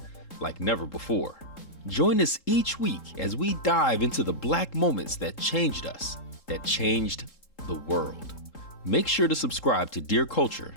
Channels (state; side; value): late; right; 3.8 ms